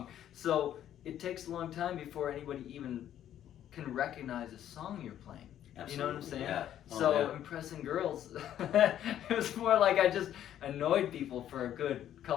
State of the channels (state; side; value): quieter; right; 11.1 dB